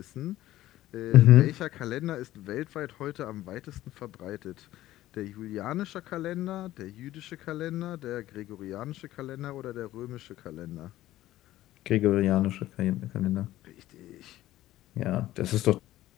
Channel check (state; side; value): quieter; right; 15.0 dB